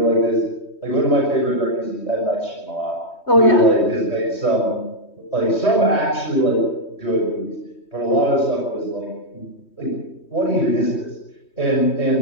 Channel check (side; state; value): right; late; 3.2 ms